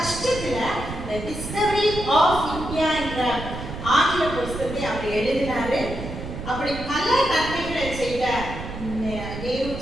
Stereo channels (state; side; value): noise; right; rumble, 9 dB below the sound